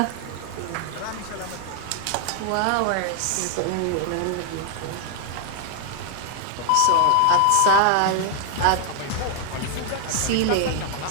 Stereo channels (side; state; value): both; different; correlation 0.00